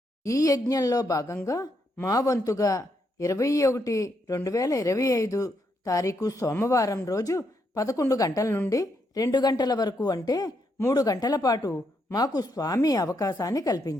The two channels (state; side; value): normal; both; correlation 0.78